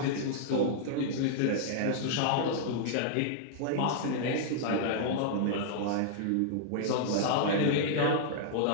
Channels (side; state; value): both; different; correlation -0.01